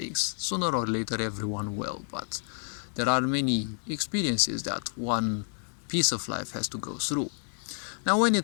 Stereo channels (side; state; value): right; silent; digital silence